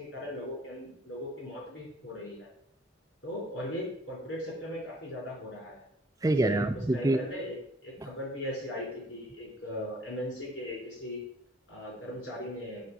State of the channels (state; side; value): normal; both; correlation 0.57